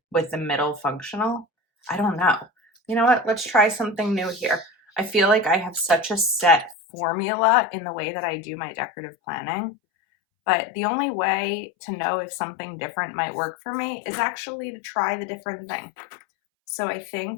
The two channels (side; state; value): right; drops out; at 6.8 s